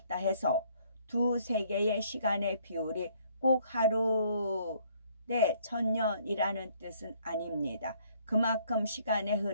해서 두 세계의 시간의 비율이 꼭 하루 대 1000년이라는 뜻은 아닙니다. 그만큼 시간의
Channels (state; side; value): inverted; both; correlation -0.63